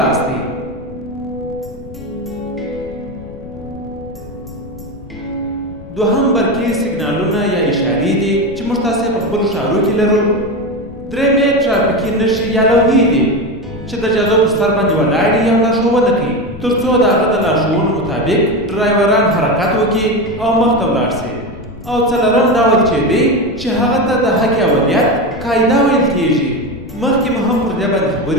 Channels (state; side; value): noise; left; rumble, 16 dB below the sound